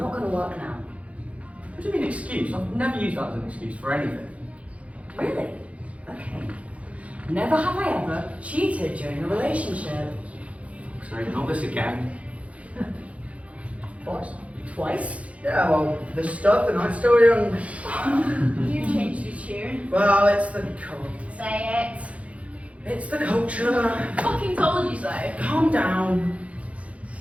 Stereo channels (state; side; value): late; left; 0.065 ms